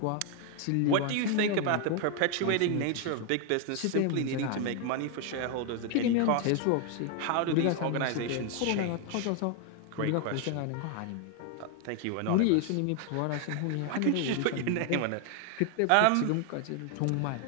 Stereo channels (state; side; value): different; both; correlation 0.00